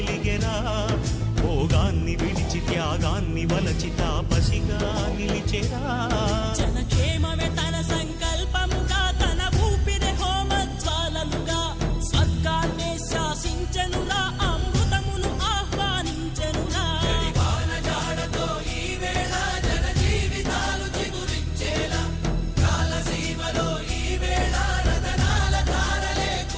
భోగాన్ని విడిచి త్యాగాన్ని వలచి తాపసిగా నిలిచెరా. జనక్షేమమే తన సంకల్పముగా, తన ఊపిరి హోమజ్వాలలుగా, స్వర్గాన్నే శాసించెనురా, అమృతమును ఆహ్వానించెనురా.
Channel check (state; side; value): identical; both; correlation 1.00